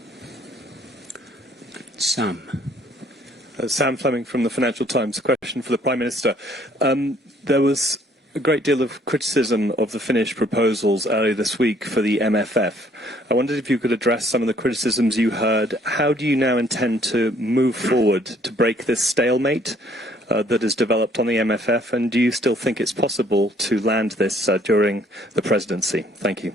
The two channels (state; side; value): normal; both; correlation 0.63